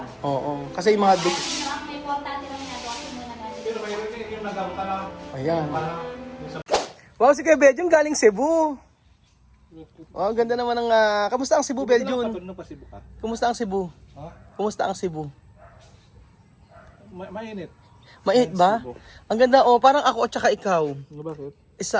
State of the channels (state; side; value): identical; both; correlation 1.00